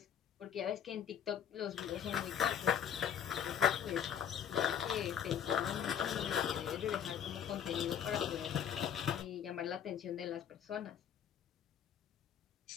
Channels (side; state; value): right; quieter; 8.8 dB